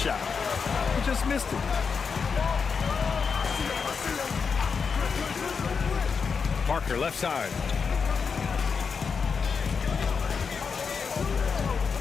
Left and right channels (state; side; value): quieter; right; 5.7 dB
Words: He just missed it. Parker left side.